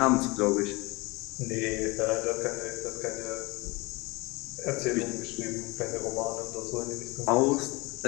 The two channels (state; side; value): quieter; right; 24.2 dB